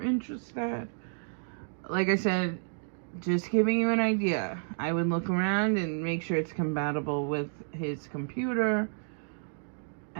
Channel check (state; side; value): silent; left; digital silence